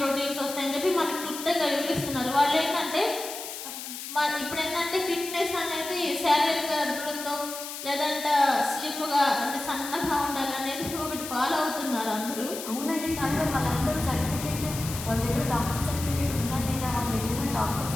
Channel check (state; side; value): noise; left; hiss, 9 dB below the sound